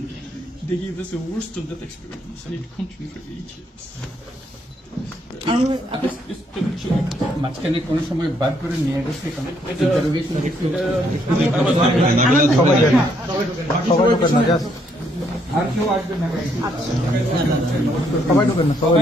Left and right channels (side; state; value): both; normal; correlation 0.72